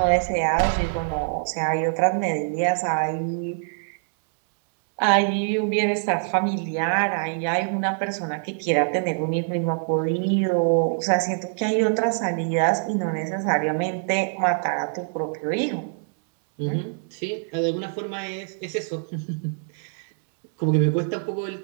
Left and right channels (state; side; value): silent; left; 62 dB below the other